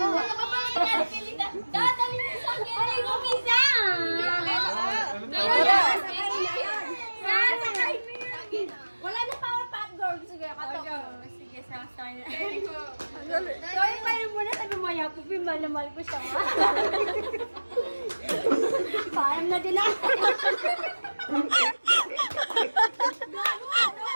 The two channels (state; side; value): inverted; both; correlation -1.00